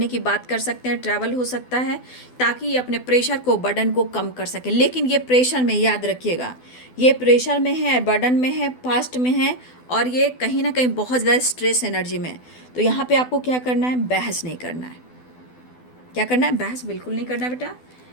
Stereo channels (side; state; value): right; late; 12 ms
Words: की बात कर सकते हैं, ट्रैवल हो सकता है, ताकि ये अपने प्रेशर को, बर्डन को कम कर सकें। लेकिन ये प्रेशर में, याद रखिएगा, ये प्रेशर में है, बर्डन में है, पास्ट में है, और ये कहीं ना कहीं बहुत ज़्यादा स्ट्रेस एनर्जी में है। तो यहाँ पे आपको क्या करना है? बहस नहीं करना है। क्या करना है? बहस बिल्कुल नहीं करना बेटा,